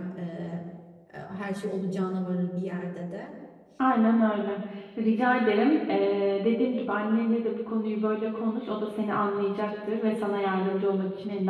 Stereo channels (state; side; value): identical; both; correlation 1.00